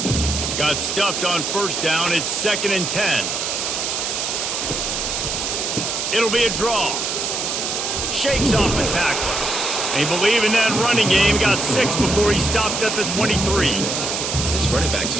Got stuffed on 1st down. It's 2nd and 10. It'll be a draw. Shakes off the tackler. They believe in that running game. Got 6 before he stopped at the 23. This running back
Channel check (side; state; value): right; noise; hiss, 2 dB below the sound